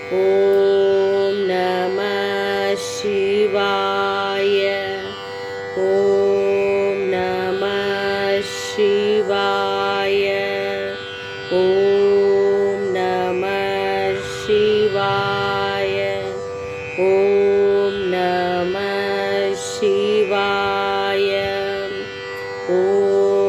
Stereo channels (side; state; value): both; identical; correlation 1.00